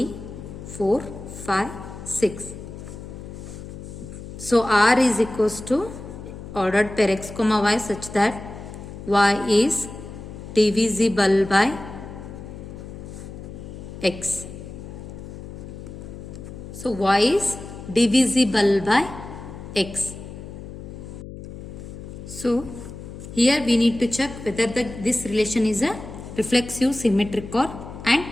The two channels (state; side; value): noise; left; hum, 12 dB below the sound